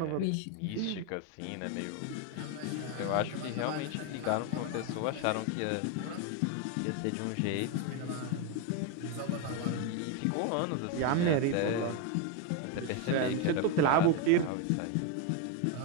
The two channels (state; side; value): different; both; correlation 0.02